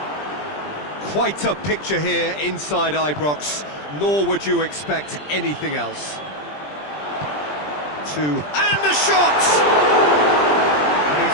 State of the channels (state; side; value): late; right; 20 ms